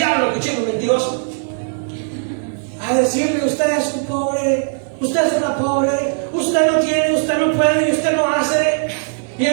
cochino mentiroso, a decirle: usted es un pobre, usted es una pobre, usted no tiene, usted no puede y usted no hace. Y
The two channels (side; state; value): left; silent; digital silence